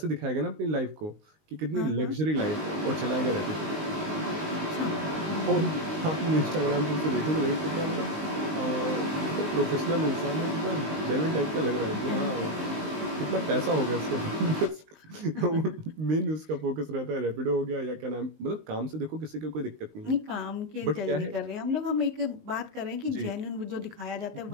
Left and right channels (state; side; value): late; left; 19 ms